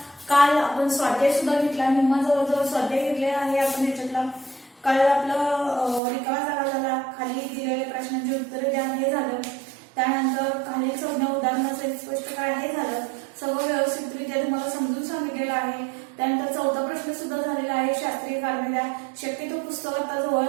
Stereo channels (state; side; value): drops out; left; at 6.0 s